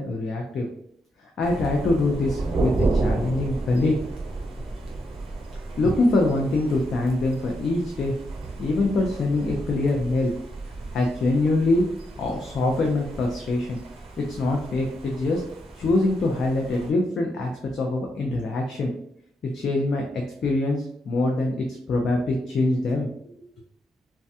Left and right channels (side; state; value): both; normal; correlation 0.82